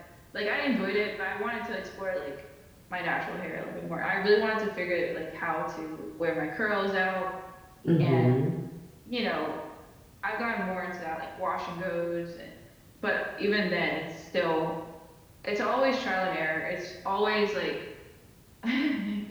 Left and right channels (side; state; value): both; identical; correlation 1.00